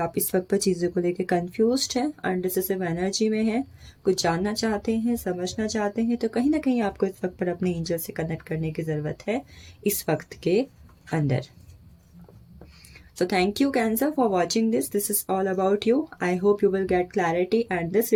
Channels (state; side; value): identical; both; correlation 1.00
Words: इस वक्त पर चीज़ों को लेकर कंफ्यूज्ड हैं, अनडिसिसिव एनर्जी में हैं, कुछ जानना चाहते हैं, समझना चाहते हैं, तो कहीं ना कहीं आपको इस वक्त पर अपने एंजल से कनेक्ट करने की ज़रूरत है इस वक्त के अंदर। So thank you Cancer for watching this. This is all about you. I hope you will get clarity and this